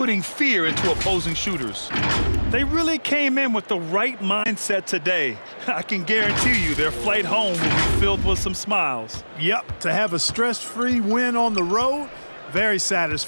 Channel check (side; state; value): both; inverted; correlation -1.00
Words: fear into opposing shooters. They really came in with the right mindset today. I can guarantee you their flight home will be filled with some smiles. Yep, to have a stress-free win on the road, very